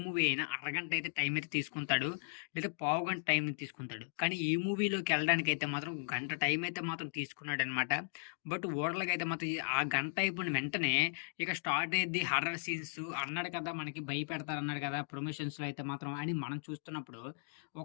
మూవీ అయినా అరగంట అయితే టైం అయితే తీసుకుంటాడు. లేదా పావుగంట టైం తీసుకుంటాడు. కానీ ఈ మూవీలోకెళ్ళడానికైతే మాత్రం గంట టైం అయితే మాత్రం తీసుకున్నాడనమాట. బట్ ఓవరాల్‌గా మాత్రం ఆ గంట అయిపోయిన వెంటనే ఇక స్టార్ట్ అయ్యిద్ది హర్రర్ సీన్స్ అన్నాడు కదా! మనకి భయపెడతారన్నాడు కదా! ప్రమోషన్స్‌లో అయితే మాత్రం అని మనం చూస్తున్నప్పుడు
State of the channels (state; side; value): silent; right; digital silence